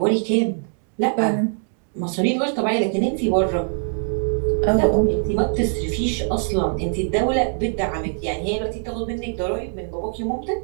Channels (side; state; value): left; silent; 62 dB below the other